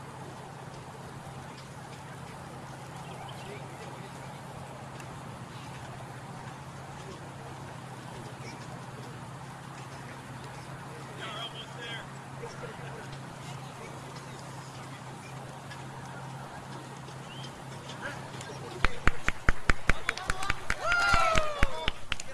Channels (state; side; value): identical; both; correlation 1.00